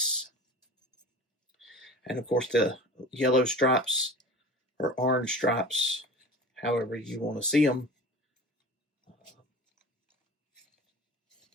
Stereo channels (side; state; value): both; normal; correlation 0.36